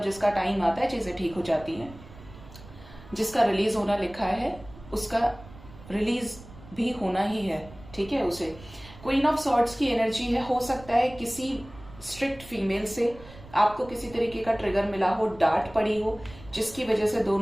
जिसका टाइम आता है चीजें ठीक हो जाती हैं। जिसका रिलीज होना लिखा है उसका रिलीज भी होना ही है, ठीक है। उसे क्वीन ऑफ सॉर्ड्स की एनर्जी है। हो सकता है किसी स्ट्रिक्ट फीमेल से आपको किसी तरीके का ट्रिगर मिला हो, डांट पड़ी हो, जिसकी वजह से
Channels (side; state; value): right; noise; rumble, 19 dB below the sound